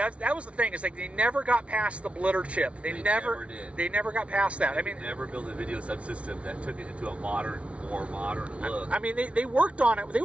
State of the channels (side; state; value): left; late; 0.062 ms